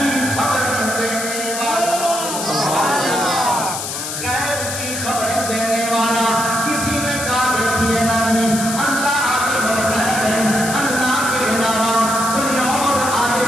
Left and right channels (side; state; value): left; noise; hiss, 5 dB below the sound